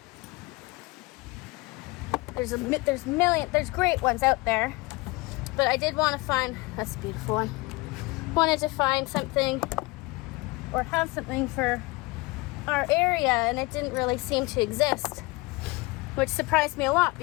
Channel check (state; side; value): quieter; right; 24.1 dB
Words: there's great ones out there, but I did want to find, that's a beautiful one, wanted to find something or have something for our area, and it didn't really seem to exist, which surprised me a lot